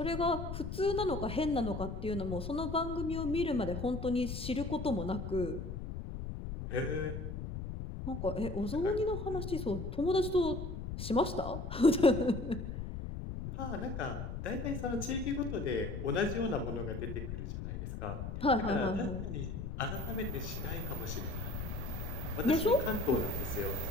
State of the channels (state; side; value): noise; left; rumble, 6 dB below the sound